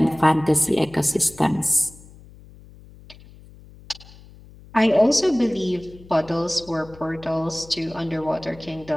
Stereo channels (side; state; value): left; noise; hum, 22 dB below the sound